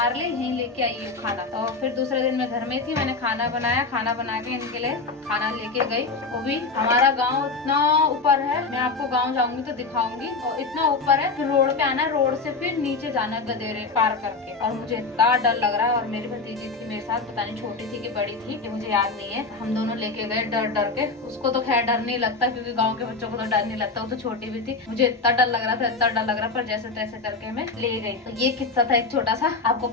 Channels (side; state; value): right; quieter; 3.9 dB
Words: लिए यहीं लेके आई खाना। तो फिर दूसरे दिन मैं घर में थी, मैंने खाना बनाया, खाना बना के इनके लिए खाना लेके गई। वो भी हमारा गांव इतना ऊपर है, मैं आपको गांव जाऊंगी तो दिखाऊंगी। और इतना ऊपर है, फिर रोड पे आना, रोड से फिर नीचे जाना गदेरे पार करके। और मुझे इतना डर लग रहा है। और मेरी भतीजी थी मेरे साथ, पता नहीं छोटी थी कि बड़ी थी, कि मुझे याद नहीं है। हम दोनों लेके गए डर डर के। उसको तो खैर डर नहीं लगता, क्योंकि गाँव के बच्चों को तो डर नहीं लगता, वो तो छोटी भी थी। मुझे इतना डर लग रहा था, इतना डर लग रहा, पर जैसे तैसे करके मैं ले गई। तो ये किस्सा था एक छोटा सा, आपको